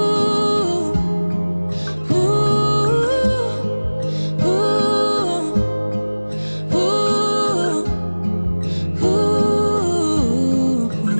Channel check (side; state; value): both; inverted; correlation -1.00